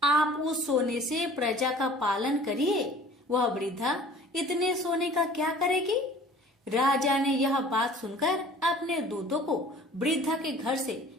आप उस सोने से प्रजा का पालन करिए। वह वृद्धा इतने सोने का क्या करेगी? राजा ने यह बात सुनकर अपने दूतों को वृद्धा के घर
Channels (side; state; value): both; normal; correlation 0.48